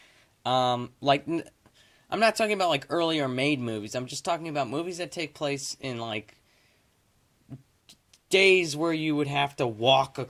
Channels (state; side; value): identical; both; correlation 1.00